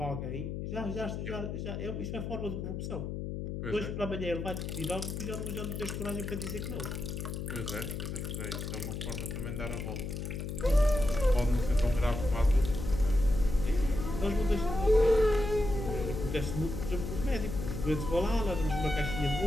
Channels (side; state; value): left; noise; hum, 5 dB below the sound